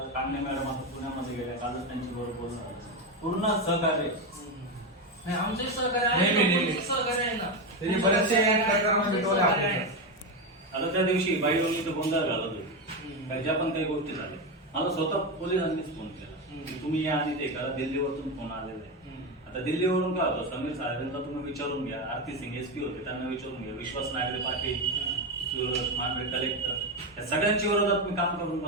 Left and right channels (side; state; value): both; normal; correlation 0.12